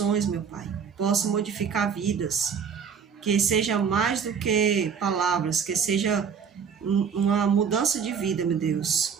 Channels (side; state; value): left; quieter; 6.8 dB